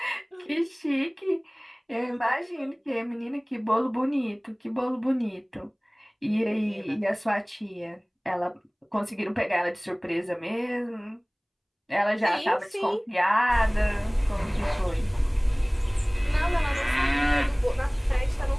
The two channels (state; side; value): identical; both; correlation 1.00